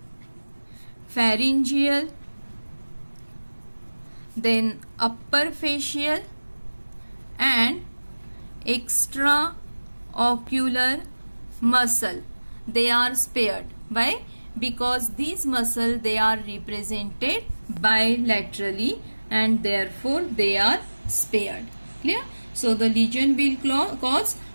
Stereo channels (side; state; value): both; inverted; correlation -1.00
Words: pharyngeal, then upper facial and extraocular muscle, they are spared. Why? Because these muscles, they are represented bilaterally and therefore they are spared. Clear? So the lesion will cause